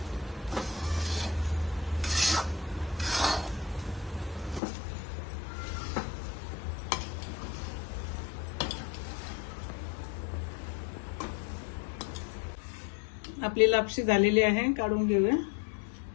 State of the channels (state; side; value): drops out; right; at 4.6 s